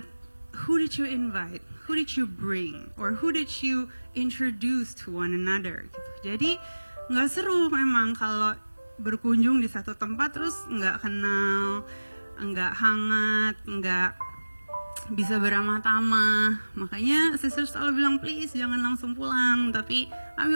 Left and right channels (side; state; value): both; inverted; correlation -1.00